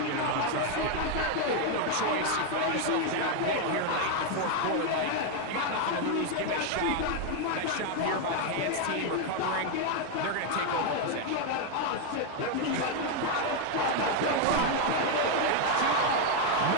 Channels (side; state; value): both; different; correlation 0.01